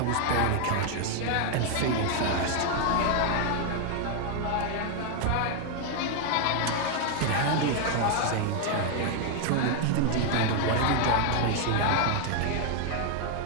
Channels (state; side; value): different; both; correlation 0.00